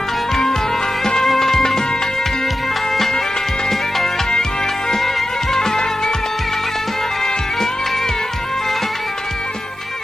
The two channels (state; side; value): normal; both; correlation 0.92